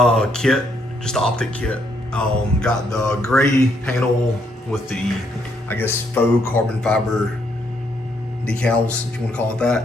kit, just the optic kit. Got the gray panel with the, I guess, faux carbon fiber decals, if you want to call it that.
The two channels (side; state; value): both; normal; correlation 0.73